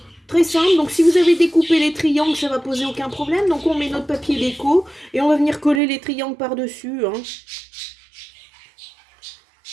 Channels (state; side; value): drops out; left; at 5.8 s